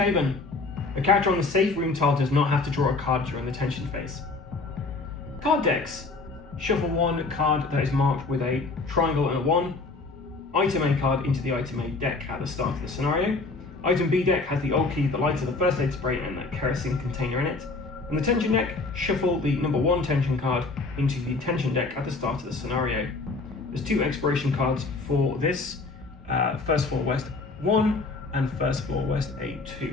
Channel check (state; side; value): quieter; right; 3.7 dB